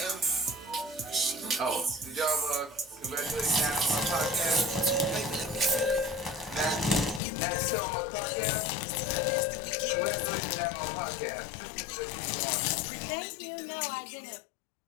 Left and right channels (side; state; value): right; drops out; at 7.2 s